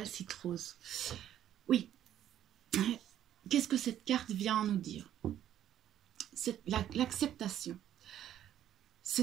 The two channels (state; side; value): quieter; left; 11.2 dB